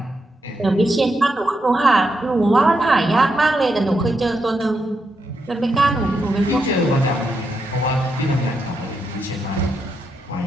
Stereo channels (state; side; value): normal; both; correlation 0.82